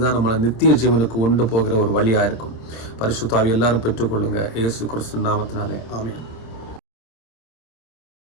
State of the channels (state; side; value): late; right; 26 ms